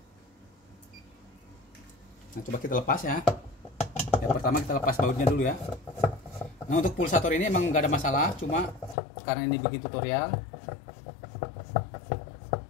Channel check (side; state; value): right; drops out; at 9.0 s